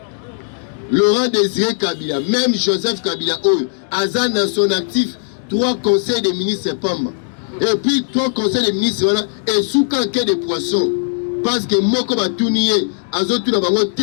Laurent Désiré Kabila, même Joseph Kabila, Azan dans son actif, 3 conseils des ministres Pamba. Et puis 3 conseils des ministres, voilà, et sous canquet de poissons. Parce que Moko Batounie, Azotou Nabango,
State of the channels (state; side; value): silent; right; digital silence